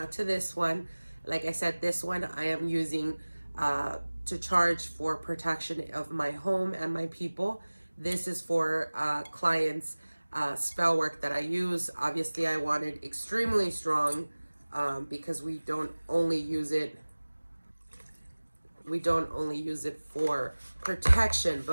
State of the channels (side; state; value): both; inverted; correlation -1.00